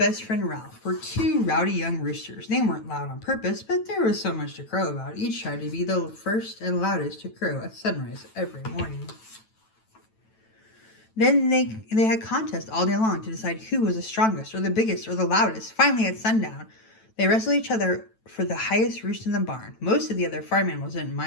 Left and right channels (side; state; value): right; late; 9.1 ms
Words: friend Ralph were two rowdy young roosters. They weren't loud on purpose, but there was so much to crow about. Each tried to be the first and loudest to crow at sunrise every morning. Then they had contests all day long to decide who was the strongest or the biggest or the loudest. Finally, at sundown, they wrestled each other for the highest roost in the barn. Most of the other farm animals didn't